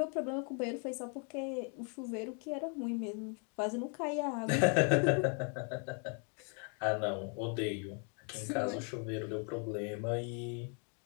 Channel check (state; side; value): quieter; right; 39.8 dB